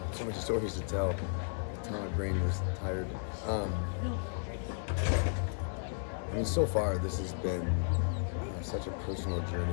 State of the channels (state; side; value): silent; right; 55 dB below the other